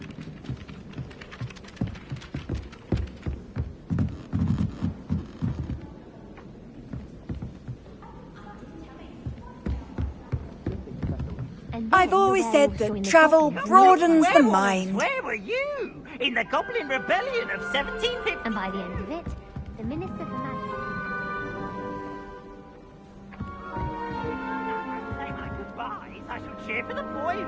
I've always said that travel broadens the mind. Where were you? In the Goblin Rebellion of 1750? And by the end of it, the Minister for Magic... Say my goodbyes. I shall cheer for the boy who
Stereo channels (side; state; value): both; identical; correlation 1.00